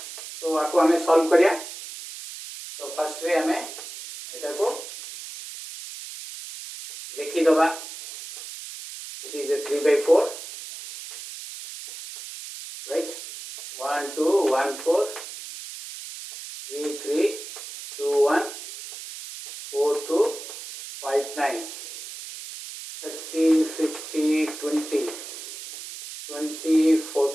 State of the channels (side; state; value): right; noise; hiss, 11 dB below the sound